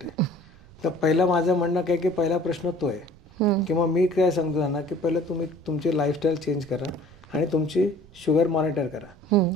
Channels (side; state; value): right; noise; rumble, 24 dB below the sound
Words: आहे. तर पहिलं माझं म्हणणं काय की पहिला प्रश्न तो आहे किंवा मी काय सांगतो ना की पहिलं तुम्ही तुमची लाईफस्टाईल चेंज करा आणि तुमची शुगर मॉनिटर करा.